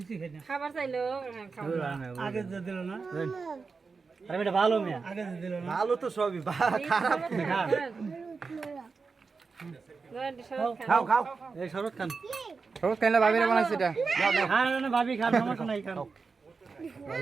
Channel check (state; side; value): quieter; left; 4.7 dB